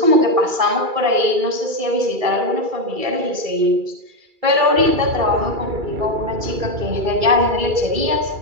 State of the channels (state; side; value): late; left; 2.3 ms